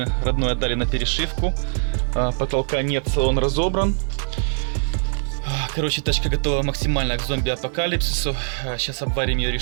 родной отдали на перешивку. Потолка нет, салон разобран. Короче, тачка готова максимально к зомби-апокалипсису. Сейчас обварим ее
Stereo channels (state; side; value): silent; left; 63 dB below the other